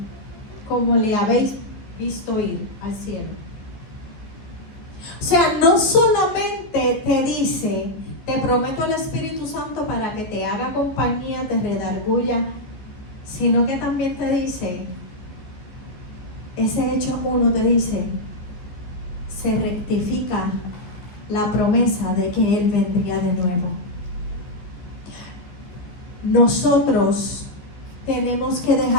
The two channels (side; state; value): right; late; 14 ms